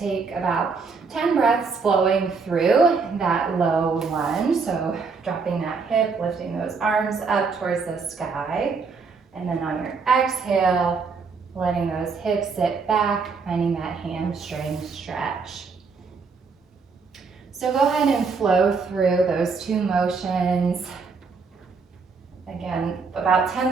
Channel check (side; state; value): left; quieter; 4.9 dB